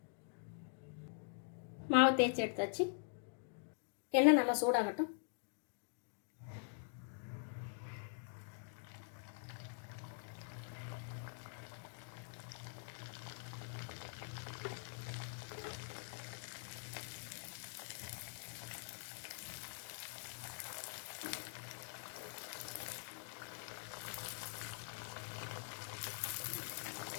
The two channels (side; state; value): right; silent; digital silence